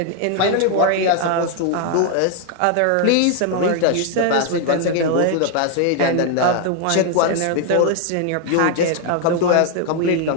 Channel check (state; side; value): different; both; correlation 0.00